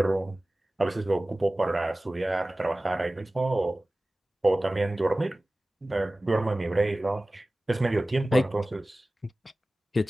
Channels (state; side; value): normal; both; correlation 0.97